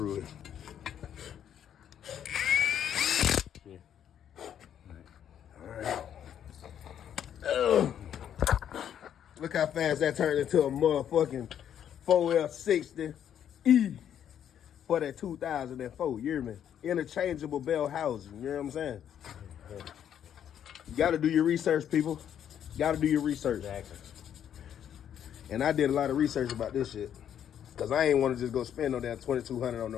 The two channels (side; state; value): right; quieter; 9.5 dB